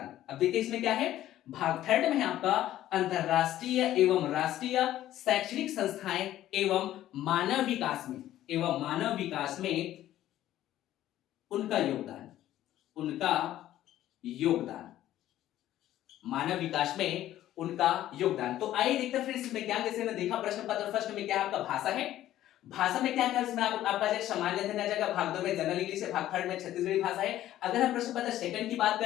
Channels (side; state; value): right; quieter; 13.3 dB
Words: अब देखिए इसमें क्या है, भाग 3 में है आपका अंतरराष्ट्रीय एवं राष्ट्रीय शैक्षणिक संस्थाएं एवं मानव विकास में, एवं मानव विकास में उनका योगदान, उनका योगदान, मानव विकास में उनका योगदान। तो आइए देखते हैं फिर इसमें क्या, जैसे हमने देखा प्रश्न पत्र फर्स्ट में क्या आपका भाषा है, भाषा में क्या क्या इसमें आपका जैसे सामान्य अध्ययन आ जाएगा, भाग 2 में जनरल इंग्लिश है, भाग 3 में छत्तीसगढ़ी भाषा है। अगर हम प्रश्न पत्र सेकंड की बात